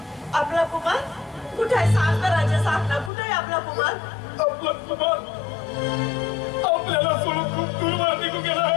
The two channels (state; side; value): drops out; right; at 3.1 s